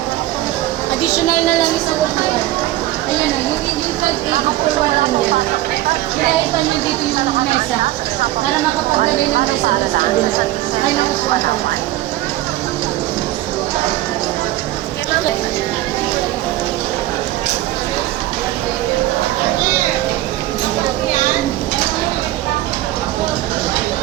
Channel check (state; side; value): quieter; left; 15.6 dB